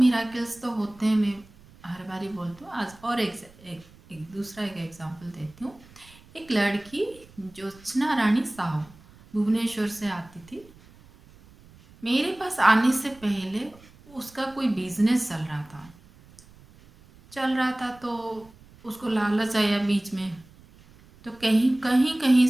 तो होते हैं, मैं हर बारी बोलती हूँ। आज और एक दूसरा एक एग्जांपल देती हूँ। एक लड़की ज्योत्सना रानी साहू भुवनेश्वर से आती थी। मेरे पास आने से पहले उसका कोई बिजनेस चल रहा था तो उसको लालच आया बीच में, तो कहीं कहीं कहीं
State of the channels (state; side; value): noise; right; rumble, 25 dB below the sound